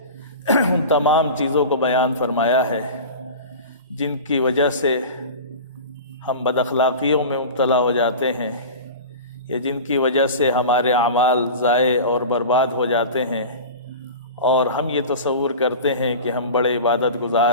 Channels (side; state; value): both; inverted; correlation -0.33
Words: ان تمام چیزوں کو بیان فرمایا ہے جن کی وجہ سے ہم بد اخلاقیوں میں مبتلا ہو جاتے ہیں، یا جن کی وجہ سے ہمارے اعمال ضائع اور برباد ہو جاتے ہیں، اور ہم یہ تصور کرتے ہیں کہ ہم بڑے عبادت